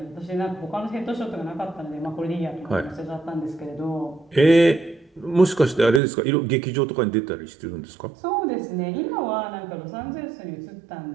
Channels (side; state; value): left; drops out; at 6.0 s